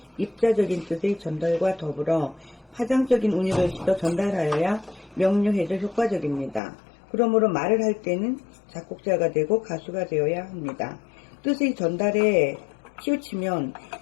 입자적인 뜻의 전달과 더불어 파장적인 운율을 싣어 전달하여야 명료해져 효과적입니다. 그러므로 말을 할 때는 작곡자가 되고 가수가 되어야 합니다. 뜻의 전달에 치우치면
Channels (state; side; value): drops out; right; at 6.6 s